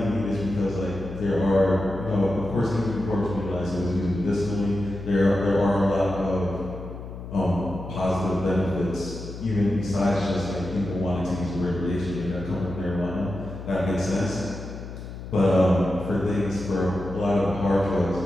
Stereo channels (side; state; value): left; noise; hum, 11 dB below the sound